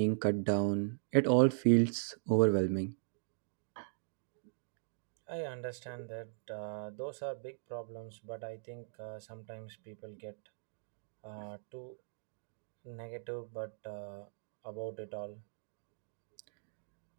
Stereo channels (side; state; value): left; silent; digital silence